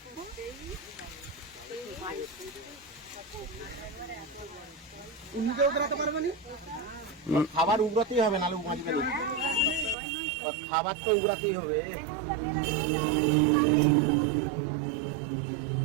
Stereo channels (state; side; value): drops out; left; at 10.0 s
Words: উনিতেও বেরোতে পারবে না, খাবার উগড়াতেই হবে, নাহলে বাঁচবে না। খাবার তো উগড়াতেই হবে।